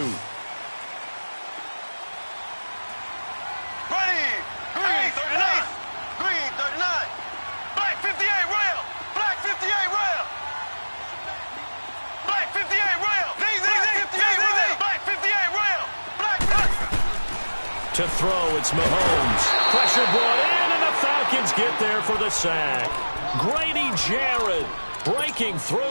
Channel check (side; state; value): both; inverted; correlation -1.00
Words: Green 39. Green 39. Black 58 rail. Black 58 rail. Black 58 rail. Black 58 rail. Black. To throw, it's Mahomes. Pressure brought in, and the Falcons get there for the sack. Grady Jarrett breaking